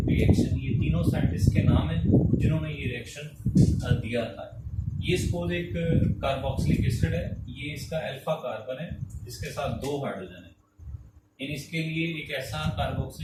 रिएक्शन। ये तीनों साइंटिस्ट के नाम है जिन्होंने ये रिएक्शन दिया था। ये सपोज एक कार्बोक्सिलिक एसिड है, ये इसका अल्फा कार्बन है, इसके साथ 2 हाइड्रोजन है। इन इसके लिए एक ऐसा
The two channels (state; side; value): identical; both; correlation 1.00